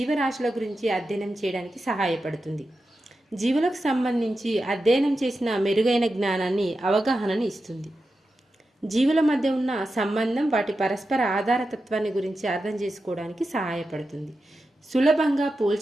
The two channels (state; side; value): normal; both; correlation 0.90